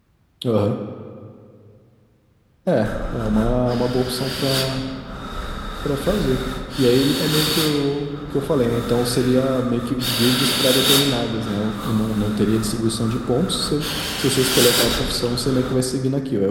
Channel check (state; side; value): identical; both; correlation 1.00